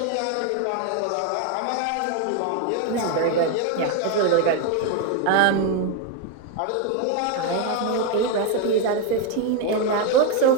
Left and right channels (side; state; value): both; different; correlation 0.01